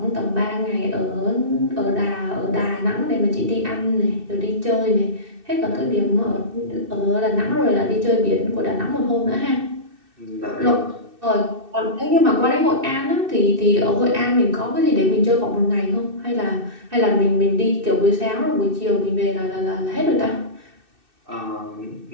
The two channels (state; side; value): late; left; 2.6 ms